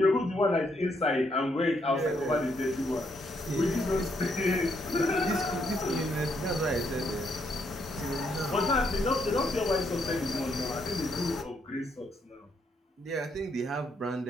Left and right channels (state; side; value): normal; both; correlation 0.74